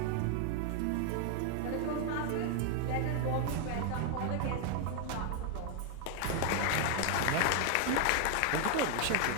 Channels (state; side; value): different; both; correlation 0.00